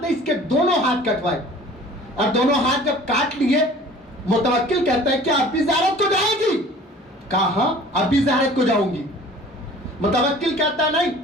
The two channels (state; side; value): normal; both; correlation 0.47